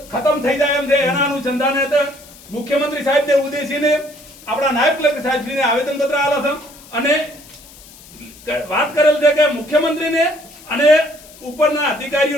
ખતમ થઈ જાય એમ છે. એના અનુસંધાને મુખ્યમંત્રી સાહેબને ઉદ્દેશીને આપણા નાયબ કલેક્ટર સાહેબશ્રીને આવેદન પત્ર આપ્યા છે અને વાત કરેલ છે કે મુખ્યમંત્રીને અને ઉપરના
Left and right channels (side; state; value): left; noise; hiss, 21 dB below the sound